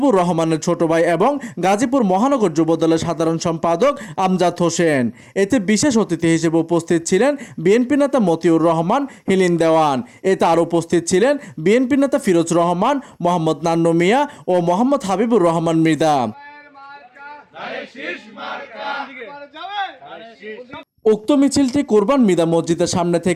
রহমানের ছোট ভাই এবং গাজীপুর মহানগর যুবদলের সাধারণ সম্পাদক আমজাদ হোসেন। এতে বিশেষ অতিথি হিসেবে উপস্থিত ছিলেন বিএনপি নেতা মতিউর রহমান হিলিন দেওয়ান। এতে আরও উপস্থিত ছিলেন বিএনপি নেতা ফিরোজ রহমান, মোহাম্মদ নান্নু মিয়া ও মোহাম্মদ হাবিবুর রহমান মৃধা। উক্ত মিছিলটি কুরবান মিদা মসজিদের সামনে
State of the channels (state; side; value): identical; both; correlation 1.00